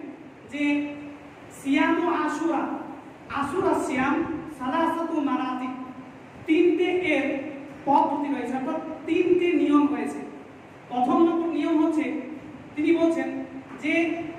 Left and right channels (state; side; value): identical; both; correlation 1.00